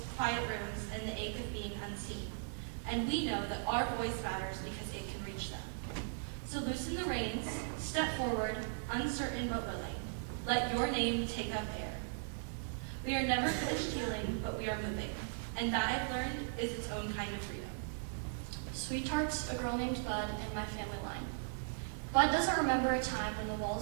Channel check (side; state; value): left; silent; digital silence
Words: quiet rooms, and the ache of being unseen. And we know that our voice matters because it can reach them. So loosen the reins, step forward, uncertain but willing. Let your name take up air. We are never finished healing, but we are moving. And that I've learned is its own kind of freedom. Sweetheart's a girl named Bud in my family line. Bud doesn't remember a time when the